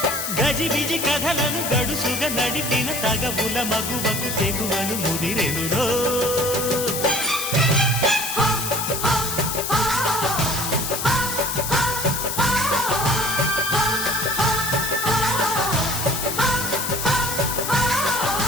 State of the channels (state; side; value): noise; left; hiss, 3 dB below the sound